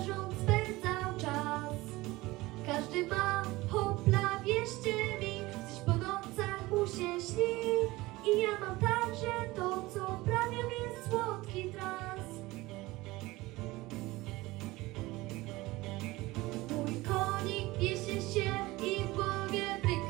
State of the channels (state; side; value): quieter; left; 20.0 dB